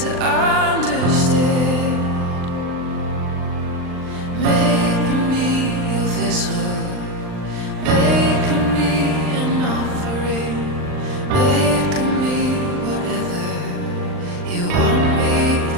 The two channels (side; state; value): left; late; 39 ms